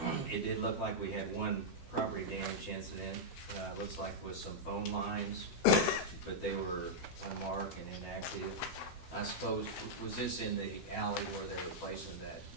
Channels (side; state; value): right; late; 12 ms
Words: it did look like we had one property damage incident. Looks like with some phone lines, but they were unmarked and inactive. I suppose, was this in the alley where they were placing that